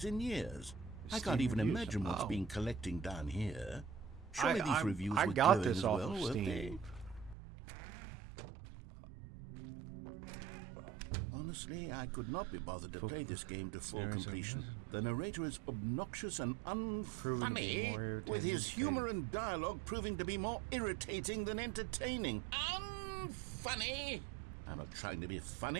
in years. I can't Steam even reviews? imagine what's Oh. been collecting down here. Surely these I reviews were got glowing this as off well, of weren't Steam. they? Honestly, I could not be bothered to play this game to full completion. The narrator is obnoxious and unfunny, with his humor and dialogue proving to be more irritating than entertaining. Unfunny? I'm not trying to be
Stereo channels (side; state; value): left; drops out; at 7.4 s